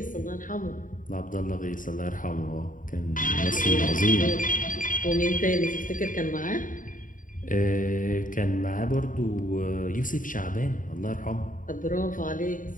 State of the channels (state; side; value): late; right; 0.39 ms